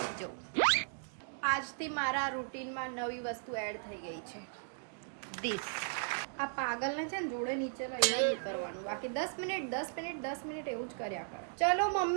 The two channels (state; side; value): silent; left; digital silence